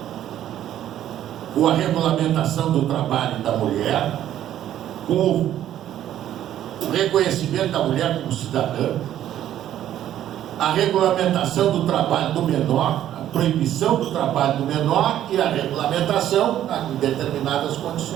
com a regulamentação do trabalho da mulher, com o reconhecimento da mulher como cidadã, a regulamentação do trabalho do menor, a proibição do trabalho do menor e a regulamentação em determinadas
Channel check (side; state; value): left; quieter; 11.7 dB